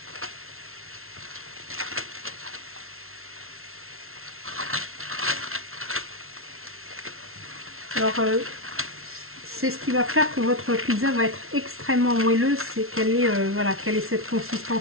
Alors, c'est ce qui va faire que votre pizza va être extrêmement moelleuse, c'est qu'elle ait, voilà, qu'elle ait cette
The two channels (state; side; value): late; left; 0.62 ms